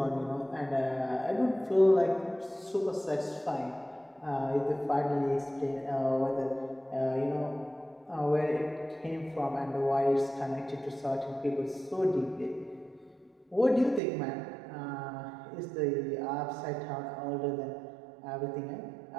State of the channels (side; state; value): left; drops out; at 14.0 s